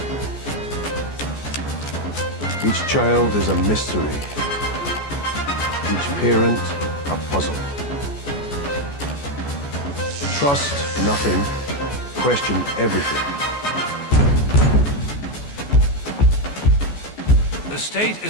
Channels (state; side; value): late; right; 14 ms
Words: Each child is a mystery. Each parent a puzzle. Trust nothing, question everything. The state